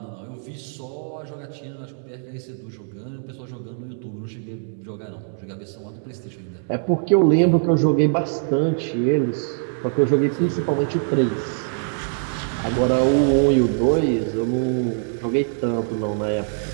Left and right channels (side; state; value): left; silent; digital silence